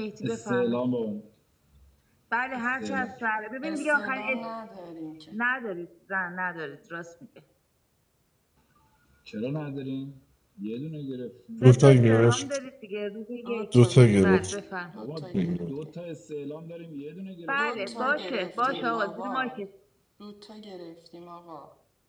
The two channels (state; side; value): identical; both; correlation 1.00